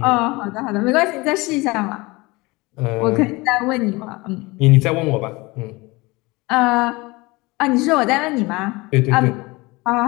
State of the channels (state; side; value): quieter; right; 23.3 dB